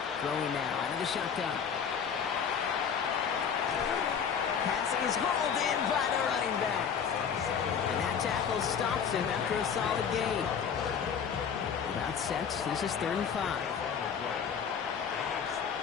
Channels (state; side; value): quieter; right; 7.1 dB